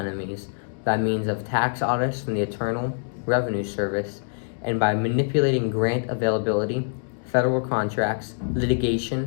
by means of tax audits from the Internal Revenue Service and by manipulating grant availability, federal contracts,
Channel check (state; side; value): silent; right; digital silence